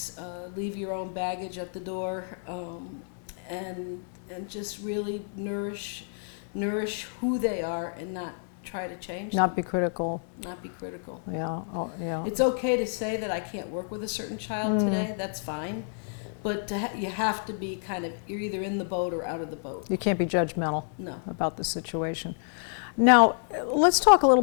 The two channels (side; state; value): right; silent; digital silence